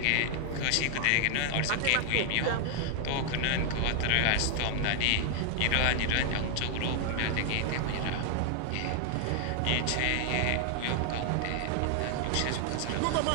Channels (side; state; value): both; different; correlation 0.00